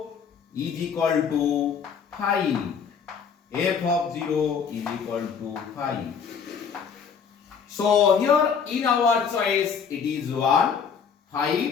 is equal to 5. F of 0 is equal to 5. So here in our choice it is 1,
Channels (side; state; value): right; quieter; 6.6 dB